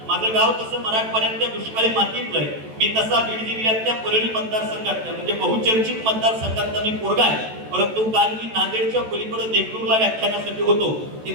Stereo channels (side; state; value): left; late; 14 ms